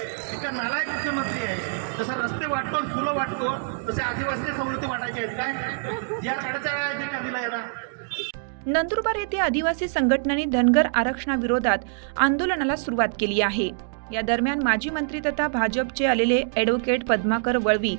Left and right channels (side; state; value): left; silent; digital silence